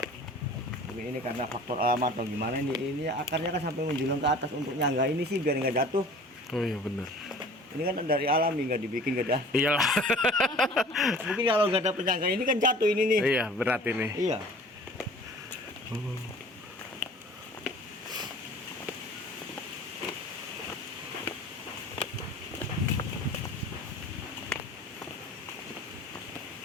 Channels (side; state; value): both; normal; correlation 0.45